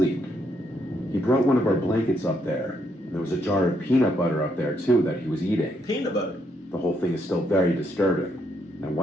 He brought one of our blankets up there, and there was a jar of peanut butter up there too that he was eating. Peanut butter? The whole thing is still very disturbing. I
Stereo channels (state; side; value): normal; both; correlation 0.75